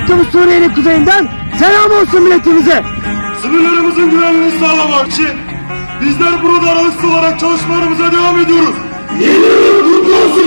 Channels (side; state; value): both; inverted; correlation -1.00